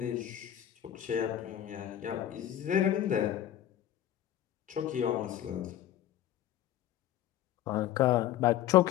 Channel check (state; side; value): quieter; right; 11.8 dB